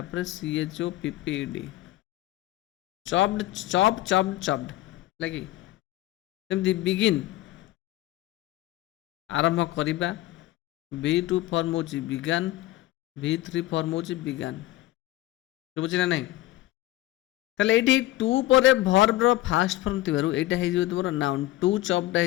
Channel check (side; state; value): right; quieter; 16.2 dB